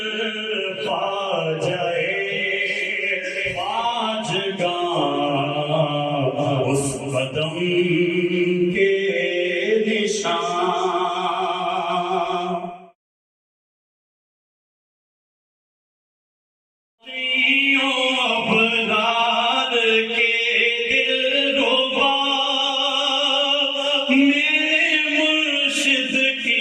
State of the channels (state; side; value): identical; both; correlation 1.00